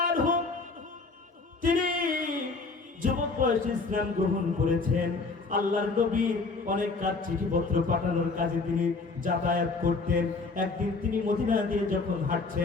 আনহুম, তিনি যুবক বয়সে ইসলাম গ্রহণ করেছেন। আল্লাহর নবী অনেক কাজ, চিঠিপত্র পাঠানোর কাজে তিনি যাতায়াত করতেন। একদিন তিনি মদিনা দিয়ে যখন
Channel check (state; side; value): quieter; right; 4.0 dB